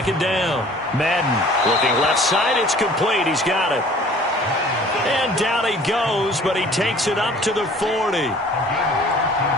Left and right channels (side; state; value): both; normal; correlation 0.50